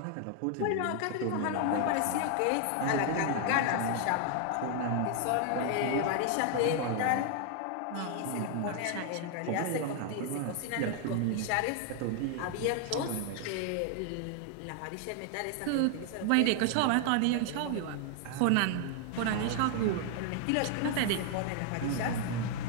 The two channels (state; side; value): different; both; correlation 0.00